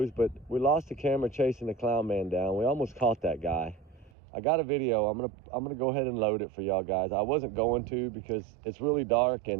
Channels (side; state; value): left; drops out; at 4.1 s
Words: but we lost the camera chasing the clown man down. We almost caught that guy. I got a video. I'm gonna go ahead and load it for y'all guys. I wasn't going to because it's really dark